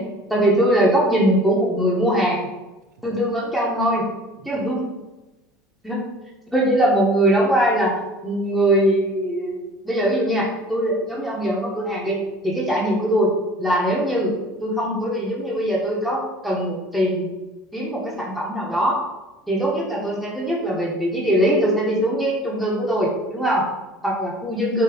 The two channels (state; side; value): normal; both; correlation 0.46